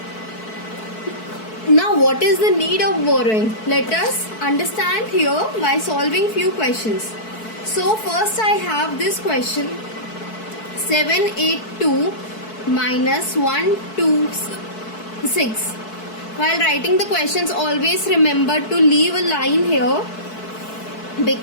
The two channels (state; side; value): late; right; 4.6 ms